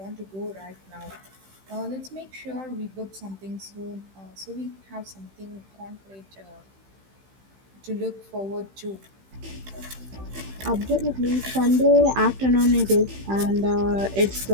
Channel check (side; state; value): left; late; 15 ms